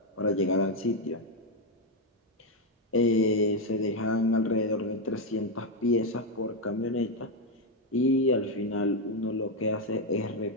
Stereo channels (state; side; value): normal; both; correlation 0.04